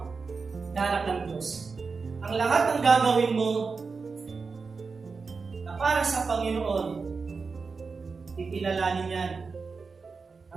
na anak ng Diyos. Ang lahat ng gagawin mo na para sa Panginoon, kikilalanin yan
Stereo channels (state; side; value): quieter; left; 4.7 dB